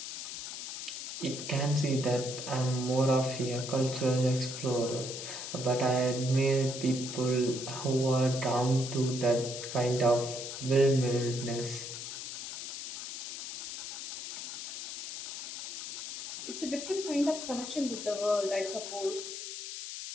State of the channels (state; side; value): noise; left; hiss, 7 dB below the sound